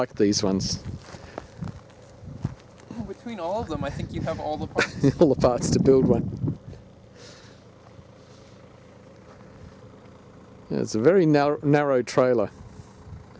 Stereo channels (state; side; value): identical; both; correlation 1.00